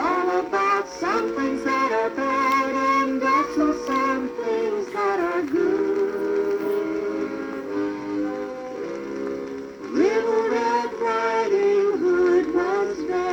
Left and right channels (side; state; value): both; identical; correlation 1.00